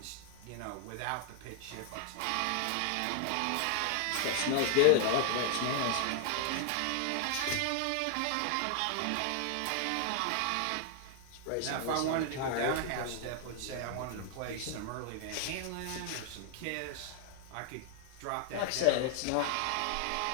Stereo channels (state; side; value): different; both; correlation 0.00